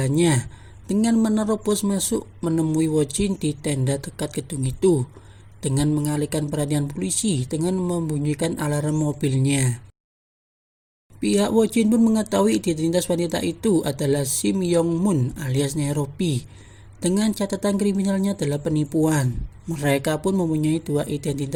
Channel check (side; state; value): both; identical; correlation 1.00